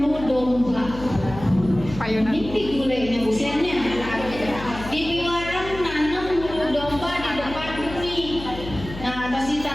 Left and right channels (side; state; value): left; noise; hum, 12 dB below the sound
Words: domba. Ini gulenya busiannya. Di Piwarang nanam bulu domba di depan bumi. Nah, pas